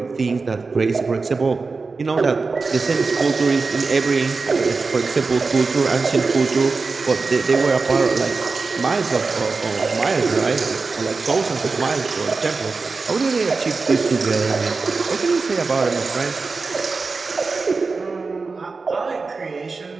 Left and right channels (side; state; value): left; quieter; 4.2 dB